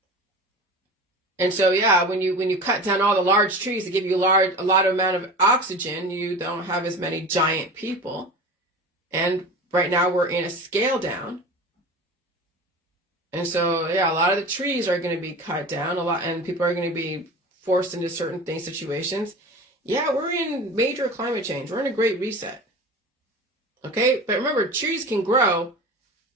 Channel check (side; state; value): both; normal; correlation 0.33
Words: And so, when you cut down all the large trees to give you a lot of amount of oxygen, you don't have as many giant people. And right now we're in a scale down. And so, a lot of the trees are going to be cut down and people are going to be forced into certain situations. We're in major climate change. We're in a great reset. Okay. But remember, trees can grow.